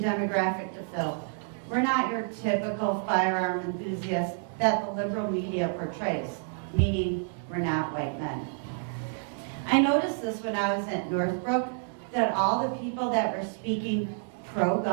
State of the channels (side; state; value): left; silent; 59 dB below the other